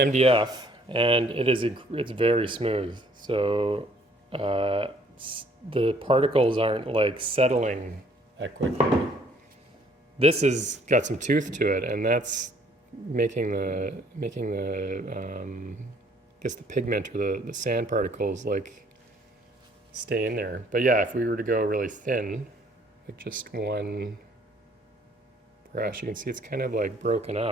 and it's very smooth. So the particles aren't like settling that quickly. This has got some tooth to it, and that's making the I guess the pigment or the sand particles like stay in there. But yeah, if we were to go really thin, like just one brush, you can see it's kind of like broken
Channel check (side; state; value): both; normal; correlation 0.61